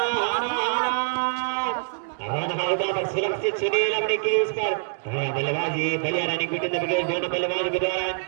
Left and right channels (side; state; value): left; silent; digital silence